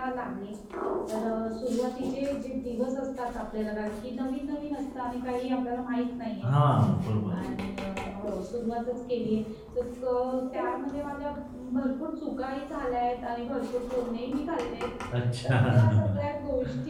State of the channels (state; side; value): identical; both; correlation 1.00